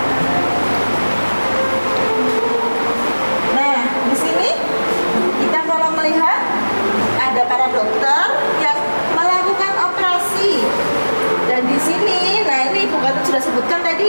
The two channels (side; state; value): both; inverted; correlation -1.00